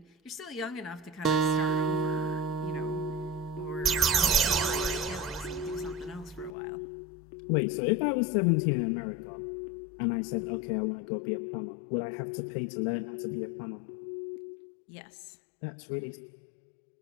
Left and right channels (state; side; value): drops out; right; at 6.6 s